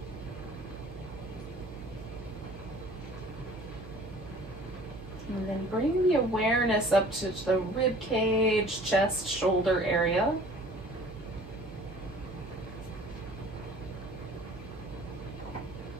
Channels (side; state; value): right; noise; hum, 16 dB below the sound